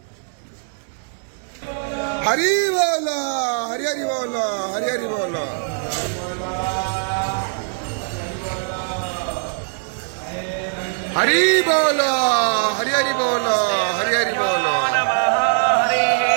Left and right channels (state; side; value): silent; left; digital silence